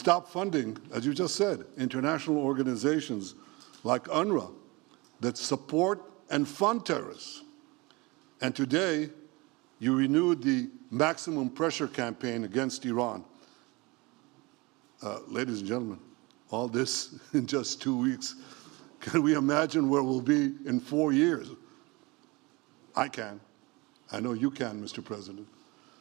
funding, as you just said, international organizations like UNRWA that support and fund terrorists. And today, you renewed the maximum pressure campaign against Iran. Ladies and gentlemen, all this in just 2 weeks. Can we imagine where we'll be in 4 years? I can. I know you can, Mr. President.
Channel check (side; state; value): left; quieter; 25.1 dB